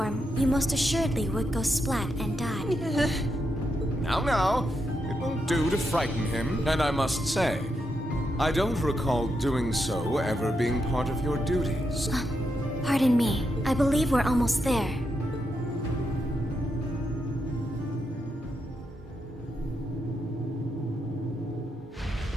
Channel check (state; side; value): normal; both; correlation 0.83